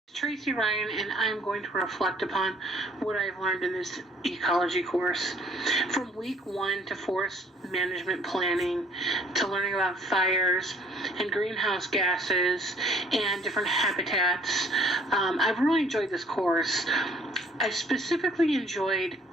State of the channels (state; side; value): normal; both; correlation 0.59